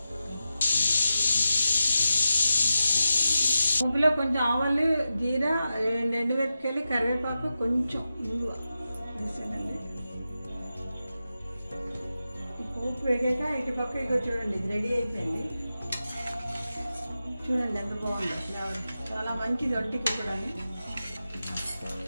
పోపులో కొంచెం ఆవాలు, జీరా, 2 ఎండుమిరపకాయలు, కరివేపాకు, కొంచెం ఇంగువ వేసానండి. పోపు వేగాక ఇటు పక్క ఇక చూడండి, ఇది రెడీ అయిపోయింది. చూడండి ఎంత బాగుంది, చాలా మంచిది ఒంటికి కూడా.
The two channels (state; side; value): inverted; both; correlation -0.91